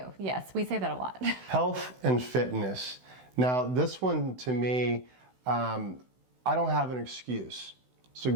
Yes, we say that a lot. Health and fitness. Now, this one to me, I don't have an excuse. So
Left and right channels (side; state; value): left; late; 16 ms